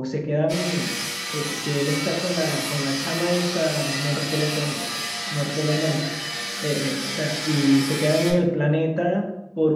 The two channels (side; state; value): both; identical; correlation 1.00